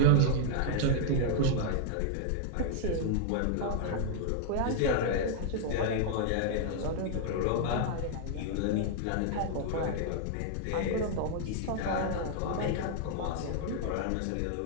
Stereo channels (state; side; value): different; both; correlation -0.01